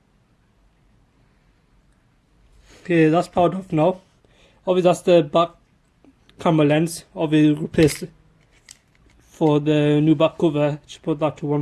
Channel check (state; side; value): identical; both; correlation 1.00